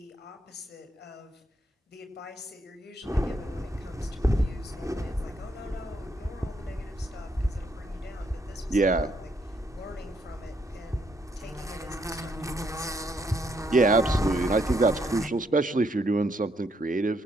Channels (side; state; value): both; normal; correlation 0.74